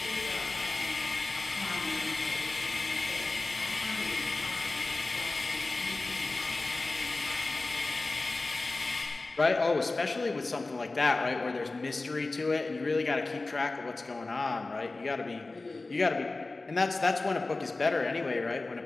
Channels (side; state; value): right; quieter; 3.3 dB